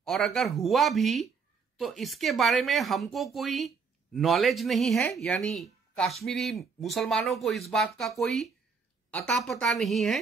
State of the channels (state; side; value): quieter; left; 5.4 dB